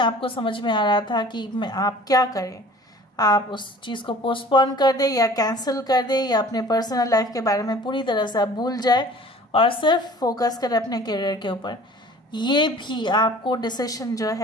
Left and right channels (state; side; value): normal; both; correlation 0.47